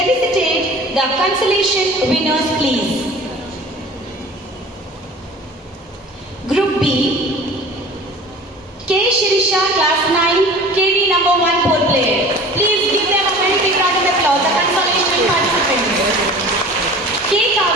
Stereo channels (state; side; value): normal; both; correlation 0.42